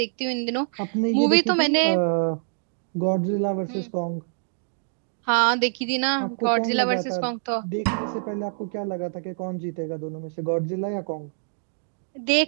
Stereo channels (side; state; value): left; silent; digital silence